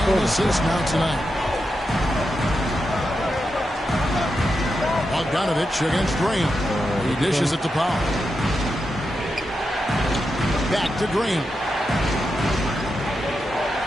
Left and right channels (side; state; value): both; normal; correlation 0.87